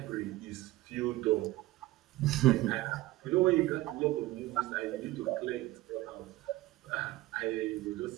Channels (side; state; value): left; quieter; 17.6 dB